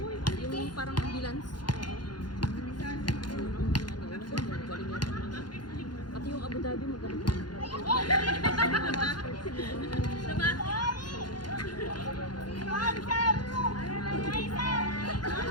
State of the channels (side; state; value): right; late; 0.71 ms